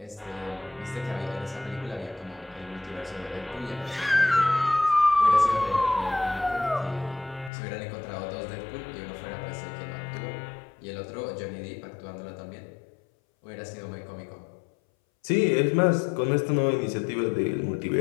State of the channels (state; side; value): drops out; right; at 7.5 s